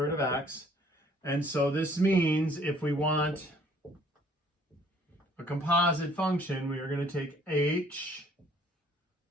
root of x. And so this means if we want a composite function, we are going to take h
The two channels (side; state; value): both; normal; correlation 0.59